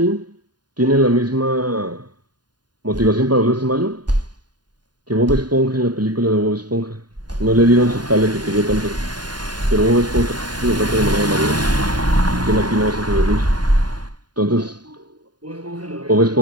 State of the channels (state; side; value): late; left; 0.70 ms